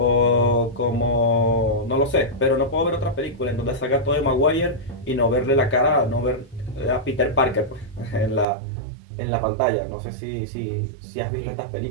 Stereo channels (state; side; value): drops out; left; at 8.5 s